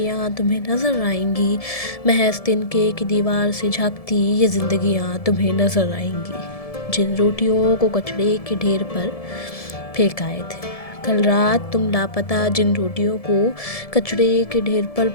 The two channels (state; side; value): late; right; 1.7 ms